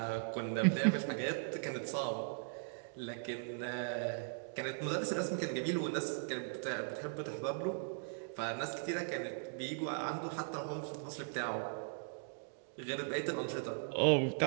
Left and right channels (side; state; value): left; silent; digital silence